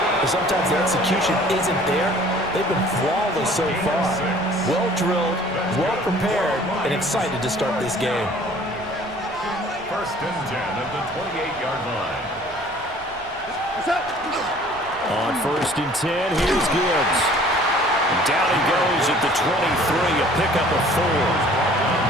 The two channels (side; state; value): left; noise; rumble, 21 dB below the sound